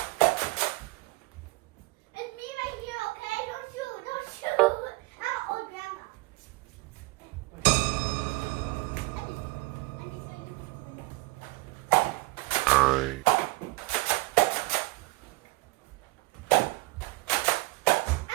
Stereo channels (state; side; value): quieter; left; 23.0 dB